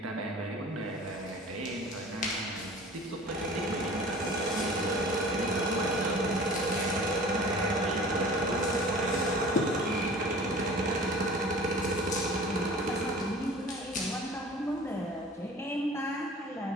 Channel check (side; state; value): both; normal; correlation 0.43